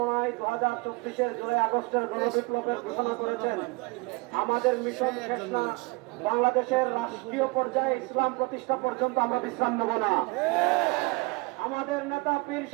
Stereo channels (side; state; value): left; quieter; 26.3 dB